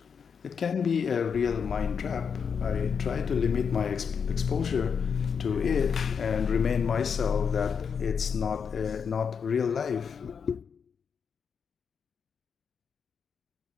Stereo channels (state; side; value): quieter; right; 6.5 dB